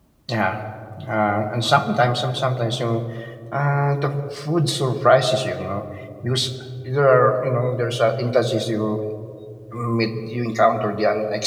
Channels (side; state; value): both; identical; correlation 1.00